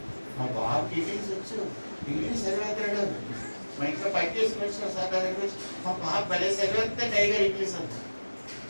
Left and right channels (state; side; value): inverted; both; correlation -1.00